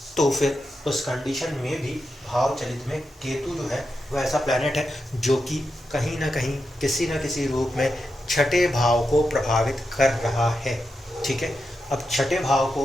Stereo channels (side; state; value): both; normal; correlation 0.88